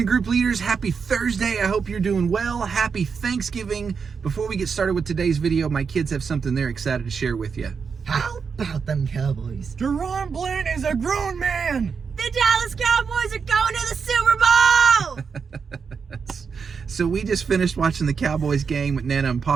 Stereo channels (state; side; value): quieter; left; 5.8 dB